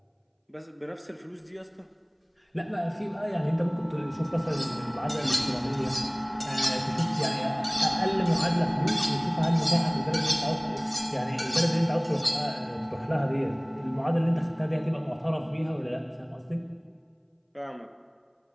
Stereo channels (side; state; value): both; identical; correlation 1.00